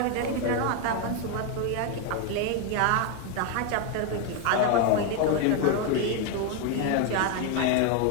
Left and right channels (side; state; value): both; different; correlation 0.01